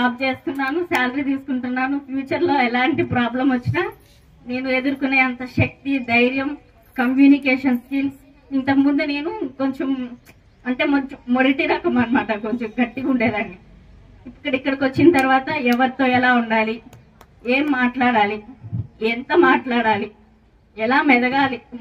చేస్తున్నాను, శాలరీ తీసుకుంటున్నాను. ఫ్యూచర్లో ఎలాంటి ప్రాబ్లం వచ్చినా నేను ఎదుర్కొనే అంత శక్తి, ధైర్యం, కమ్యూనికేషన్ స్కిల్స్. ఇంతకుముందు నేను కొంచెం అంటే మొదటి రకం అనమాట, కొంచెం గట్టిగా ఉండేదాన్ని. ఇక్కడికి వచ్చిన తర్వాత ఎవరితో ఎలా ఉండాలి, ఏం మాట్లాడాలి, ఎంత మాట్లాడాలి, ఎలా మెదగాలి,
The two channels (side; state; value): both; identical; correlation 1.00